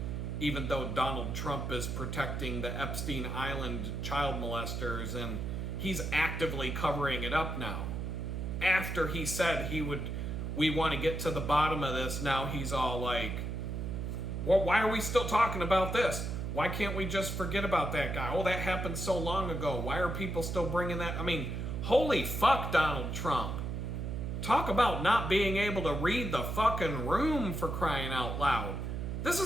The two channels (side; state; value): right; noise; hum, 3 dB below the sound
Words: even though Donald Trump is protecting the Epstein Island child molesters, and he's actively covering it up now. After he said we want to get to the bottom of this, now he's all like, well, why are we still talking about this? Why can't we just forget about that guy? Oh, that happened so long ago. Why are people still bringing that? I mean, holy fuck, Donald Trump. Talk about not being able to read the fucking room, for crying out loud. This